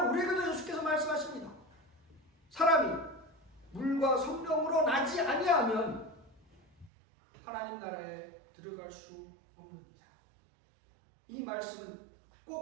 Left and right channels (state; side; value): drops out; left; at 6.9 s